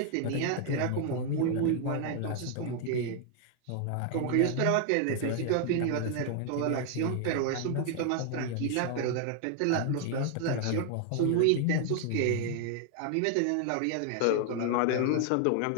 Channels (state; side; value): different; both; correlation 0.00